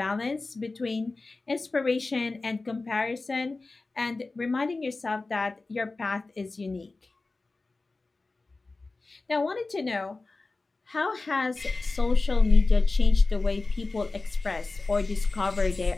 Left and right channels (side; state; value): right; quieter; 3.5 dB